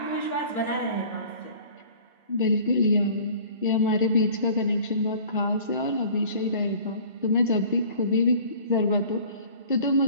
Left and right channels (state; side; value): inverted; both; correlation -0.48